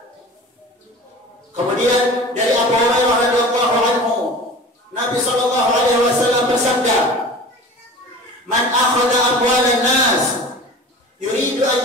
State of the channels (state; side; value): normal; both; correlation 0.38